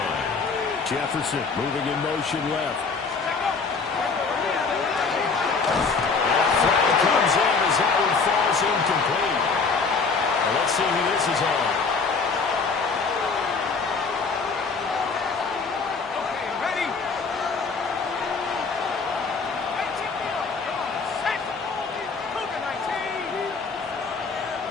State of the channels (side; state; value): right; quieter; 4.7 dB